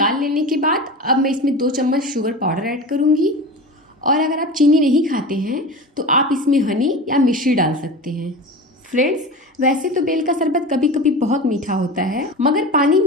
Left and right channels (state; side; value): normal; both; correlation 0.30